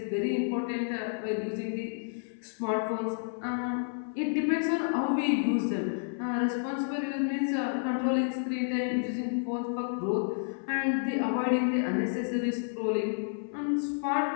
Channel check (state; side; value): silent; right; 58 dB below the other